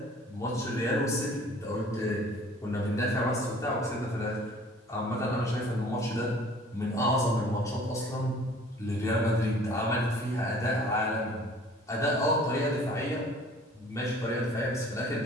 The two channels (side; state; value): both; normal; correlation 0.51